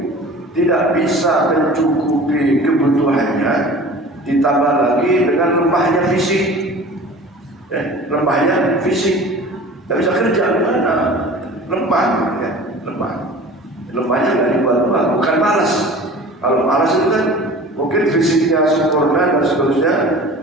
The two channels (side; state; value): both; normal; correlation 0.41